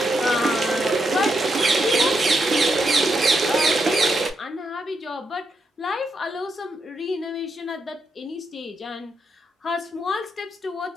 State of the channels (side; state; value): both; normal; correlation 0.82